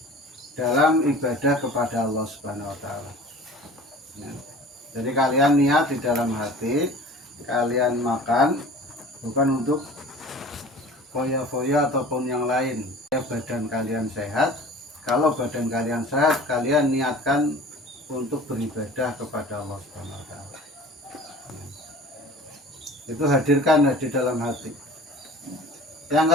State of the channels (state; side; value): normal; both; correlation 0.43